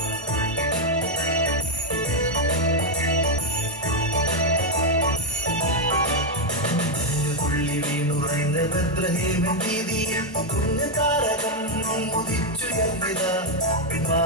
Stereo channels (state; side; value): normal; both; correlation 0.03